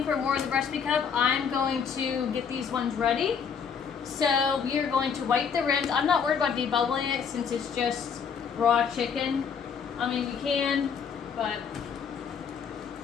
for more of the recipe cup, I'm going to get these ones ready. So we are going to wipe the rims. I'm not worried about debubbling it since it's just raw chicken. I mean, you can, but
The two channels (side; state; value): right; quieter; 6.7 dB